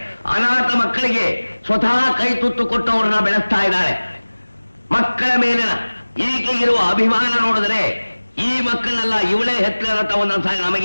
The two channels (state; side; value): inverted; both; correlation -1.00